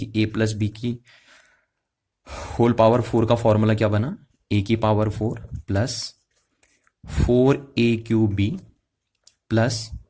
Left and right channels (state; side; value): identical; both; correlation 1.00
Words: ए प्लस बी की होल पावर 4 का फॉर्मूला क्या बना, ए की power 4 plus 4a³ B plus